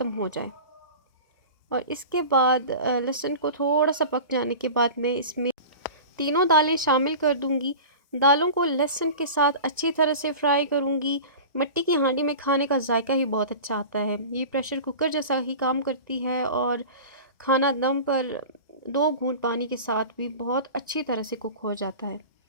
हो जाए। और इसके बाद लहसुन को थोड़ा सा पक जाने के बाद मैं इसमें तीनों दालें शामिल कर दूंगी। दालों को लहसुन के साथ अच्छी तरह से फ्राई करूंगी। मिट्टी की हांडी में खाने का जायका ही बहुत अच्छा आता है। ये प्रेशर कुकर जैसा ही काम करती है और खाना दम पर 2 घूंट पानी के साथ भी बहुत अच्छी तरह से कुक हो जाता है।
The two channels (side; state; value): both; inverted; correlation -0.34